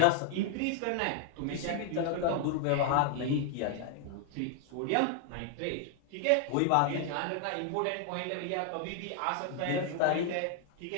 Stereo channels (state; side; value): different; both; correlation 0.00